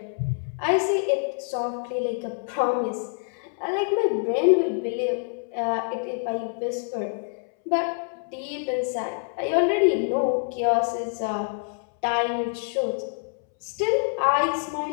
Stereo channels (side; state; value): right; silent; 61 dB below the other